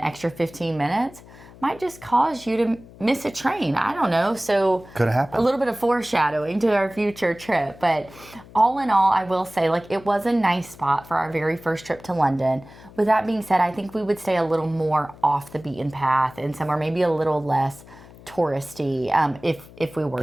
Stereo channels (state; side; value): noise; left; hum, 21 dB below the sound